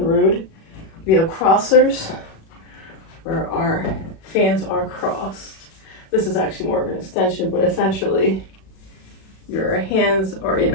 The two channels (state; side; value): late; right; 37 ms